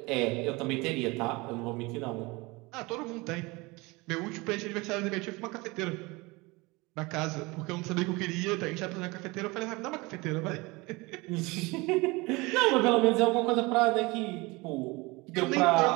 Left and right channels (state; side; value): quieter; left; 24.2 dB